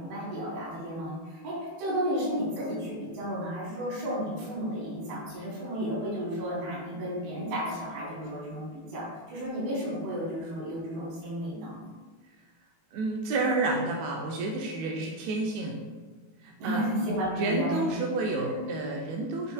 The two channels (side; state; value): left; late; 18 ms